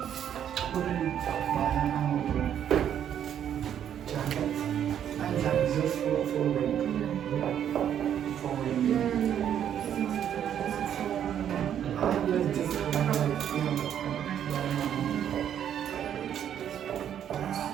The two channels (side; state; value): left; quieter; 9.6 dB